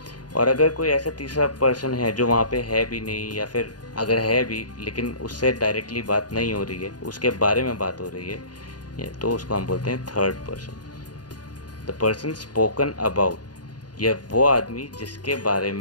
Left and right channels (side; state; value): right; late; 0.69 ms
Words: और अगर कोई ऐसा तीसरा पर्सन है जो वहाँ पे है भी नहीं, या फिर अगर है भी लेकिन उससे डायरेक्टली बात नहीं हो रही है, उसके बारे में बात हो रही है, तो उसको हम बोलते हैं third person. The person spoken about, यह वो आदमी जिसके बारे